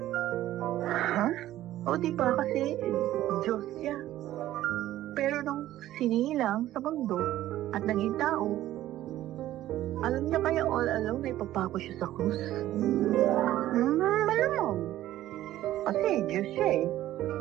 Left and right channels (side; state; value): left; quieter; 14.0 dB